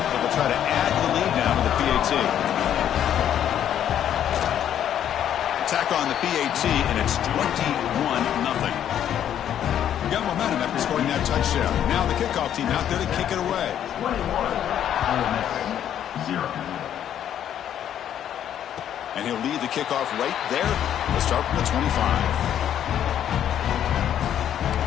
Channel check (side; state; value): right; quieter; 10.2 dB